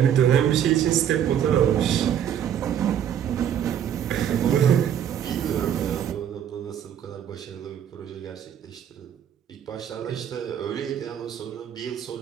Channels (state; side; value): quieter; left; 9.5 dB